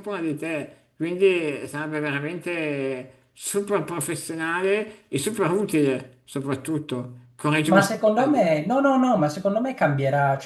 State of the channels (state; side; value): identical; both; correlation 1.00